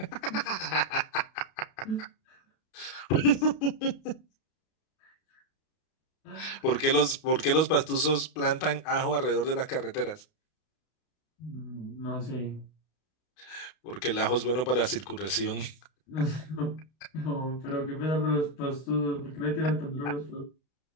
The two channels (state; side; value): late; right; 32 ms